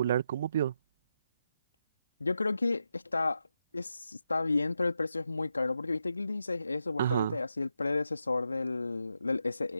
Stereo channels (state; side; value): inverted; both; correlation -0.85